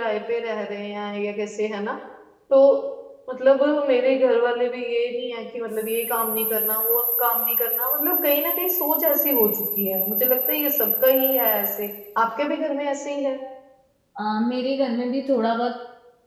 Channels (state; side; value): identical; both; correlation 1.00